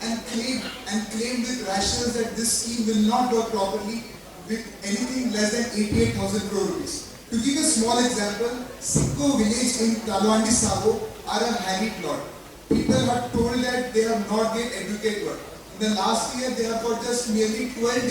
and claimed with rationals that this scheme will not work properly with anything less than 88,000 crore rupees. To give a small example, Sikko village in Talwandi Sabo are a harried lot. People are told that they have not get educated work. In the last year, they have got just nearly 12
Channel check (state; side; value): identical; both; correlation 1.00